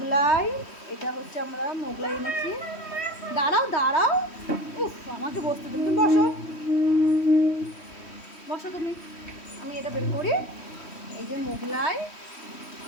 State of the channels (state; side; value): late; right; 3.1 ms